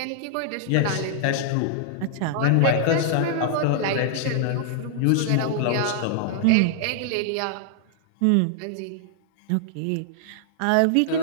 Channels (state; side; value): different; both; correlation -0.01